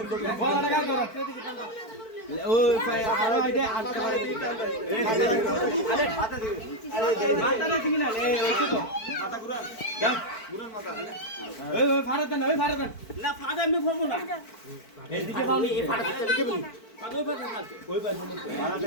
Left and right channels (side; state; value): right; late; 4.5 ms